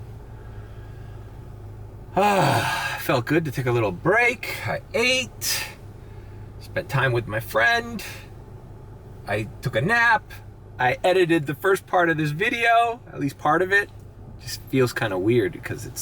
Felt good to take a little break. I ate, spent time with my friend. I took a nap. I edited the first part of this video, at least part of it. Just feels kind of weird because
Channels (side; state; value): both; identical; correlation 1.00